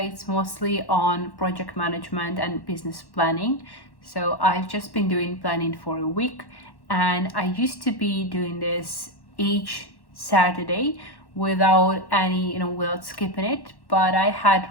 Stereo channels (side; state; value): right; late; 1.1 ms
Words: mostly on project management and business planning. So I've just been doing planning for a week, and I used to be doing this each Saturday without without skipping it. But I had